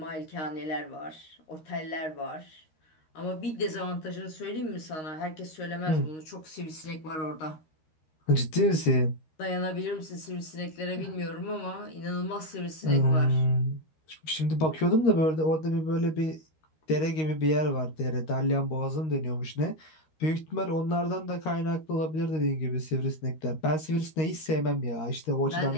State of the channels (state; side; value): late; right; 13 ms